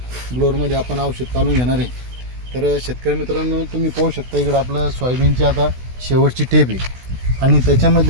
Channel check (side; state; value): left; late; 16 ms